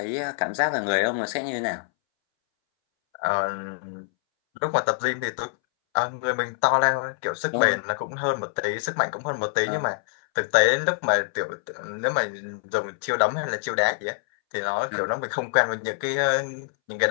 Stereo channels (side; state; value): right; silent; 62 dB below the other